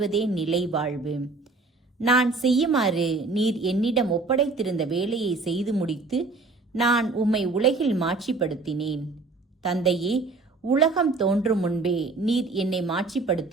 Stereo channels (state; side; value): quieter; left; 3.7 dB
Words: நிலை வாழ்வு. நான் செய்யுமாறு நீர் என்னிடம் ஒப்படைத்திருந்த வேலையை செய்து முடித்து நான் உம்மை உலகில் மாட்சிப்படுத்தினேன். தந்தையே, உலகம் தோன்றும் முன்பே நீர் என்னை